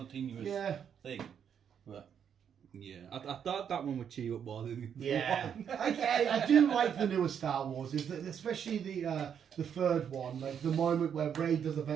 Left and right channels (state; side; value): quieter; left; 8.1 dB